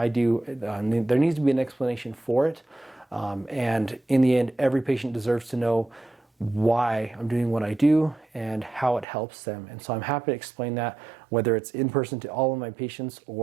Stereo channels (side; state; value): left; drops out; at 9.1 s